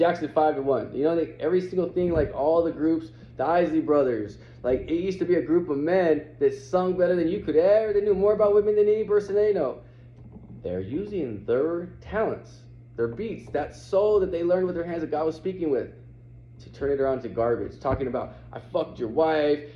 5 and 1. You know, every single thing, like all the groups, the Isley Brothers, like it used to be a group of men that sung better than you could ever. They knew more about women than any person they know. They're using their talents, their beats, that soul that they learned with their hands that God was speaking with, to turn it around to garbage. Talking about, I fucked your wife,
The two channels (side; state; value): both; identical; correlation 1.00